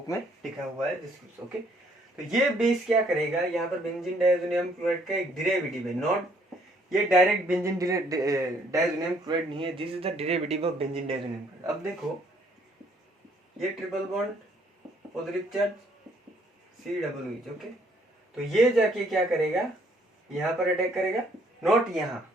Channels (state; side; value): normal; both; correlation 0.65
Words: में लिखा हुआ है दिस। ओके, तो ये बेस क्या करेगा, यहाँ पर बेंजीन डायजोनियम क्लोराइड का एक डेरिवेटिव है, नॉट ये डायरेक्ट बेंजीन डायजोनियम क्लोराइड नहीं है, this is the derivative of benzene diazonium chloride. अब देखो ये triple bond positive charge COOH। Okay, तो ये जाके क्या करेगा, यहाँ पर अटैक करेगा, नॉट यहाँ,